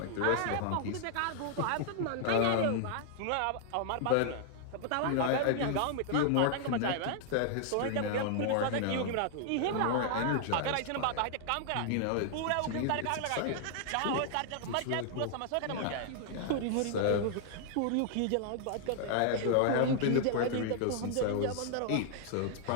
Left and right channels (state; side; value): different; both; correlation 0.00